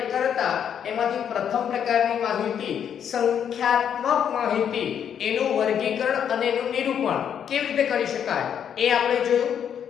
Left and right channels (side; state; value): right; quieter; 8.6 dB